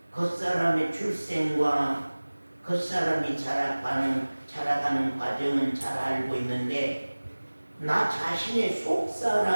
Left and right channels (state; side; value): inverted; both; correlation -1.00